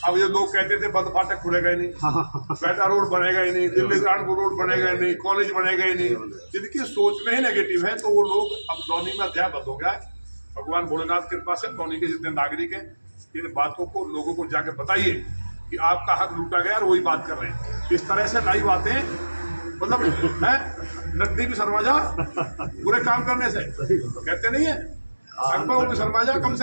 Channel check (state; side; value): inverted; both; correlation -1.00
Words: अब ये लोग कहते थे बंद फाटक खुलेगा ही नहीं, बेटा रोड बनेगा ही नहीं, दिल्ली कानपुर रोड बनेगा ही नहीं, कॉलेज बनेगा ही नहीं। जिनकी सोच में ही नेगेटिव है, तो वो लोग अब कॉलोनी में अध्याय बंद हो गया है। भगवान भोलेनाथ की कृपा से कॉलोनी के जितने नागरिक हैं, इन बातों को लोगों को जाके बताइए कि आपका हक लूटा गया और वही बात कर रहे हैं। इस तरह से नई बातें, मतलब है नकदी भी शर्मा जा बुरे काम करने से, कहते नहीं है अकबर भी शर्मा जा, कम